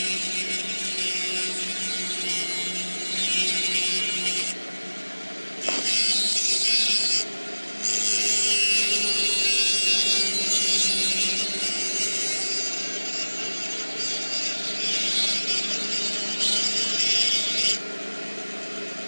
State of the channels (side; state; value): both; inverted; correlation -1.00